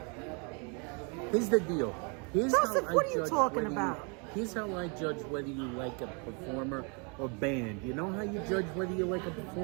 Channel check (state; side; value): quieter; left; 34.9 dB